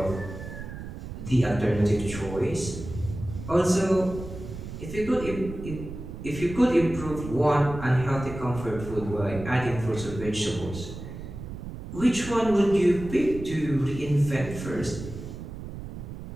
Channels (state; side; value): noise; right; rumble, 10 dB below the sound